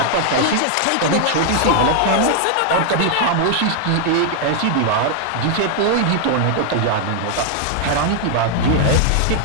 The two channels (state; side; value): different; both; correlation 0.00